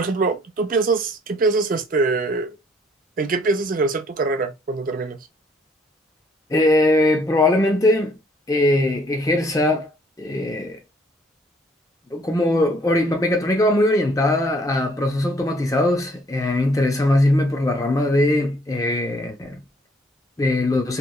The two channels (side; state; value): both; normal; correlation 0.63